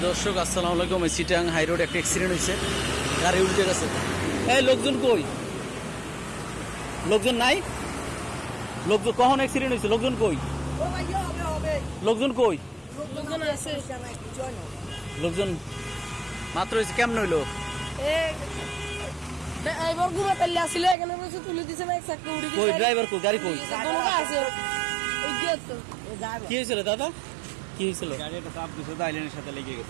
দর্শক আসসালামু আলাইকুম। চিটাং হাই রোড একটা অ্যাক্সিডেন্ট হয়েছে, গাড়ি উল্টে গেছে। এই লোকজন কই? লোকজন নাই? লোকজন কখন অ্যাক্সিডেন্ট হয়েছে? লোকজন কই? লোকজন কই? লোকজন মাত্র হয়েছে, কেমন হইলো? কই ড্রাইভার কই? গাড়ি কই? কি হয়েছিল দাদা? কি হয়েছিল? গাড়ি একটা চাপ দিছে, আইল্যান্ডের সাথে লেগে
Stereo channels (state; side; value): drops out; left; at 21.0 s